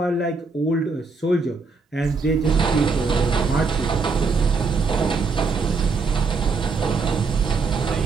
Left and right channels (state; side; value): quieter; left; 4.4 dB